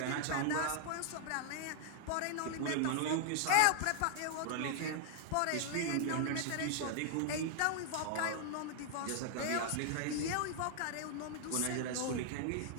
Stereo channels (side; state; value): both; different; correlation 0.00